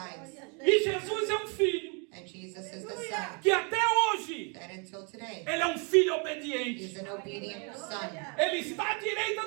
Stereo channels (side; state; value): left; quieter; 36.0 dB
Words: E Jesus é um filho And Jesus is the Son que até hoje that until today, ele é um filho obediente. he's an obedient Son. Ele está à